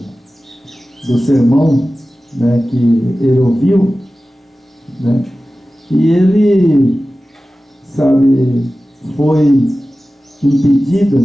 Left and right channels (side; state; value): both; normal; correlation 0.96